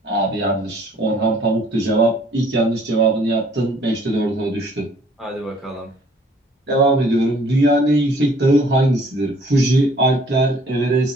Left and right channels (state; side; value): normal; both; correlation 0.58